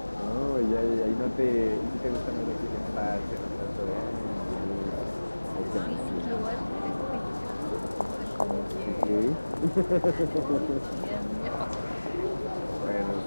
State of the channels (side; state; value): both; inverted; correlation -1.00